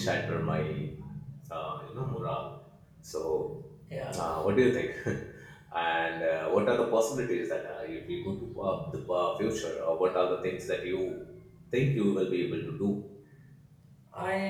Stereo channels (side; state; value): both; identical; correlation 1.00